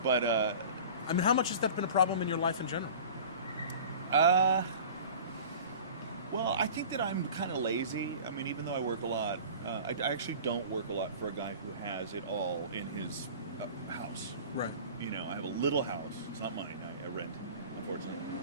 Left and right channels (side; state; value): both; inverted; correlation -0.40